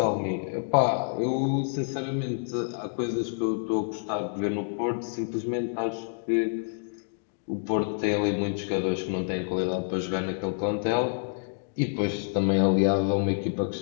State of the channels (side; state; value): right; silent; digital silence